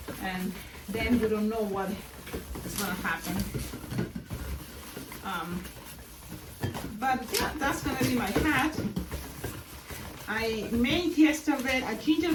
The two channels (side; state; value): both; identical; correlation 1.00